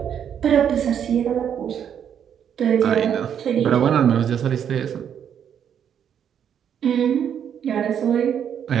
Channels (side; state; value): left; quieter; 8.6 dB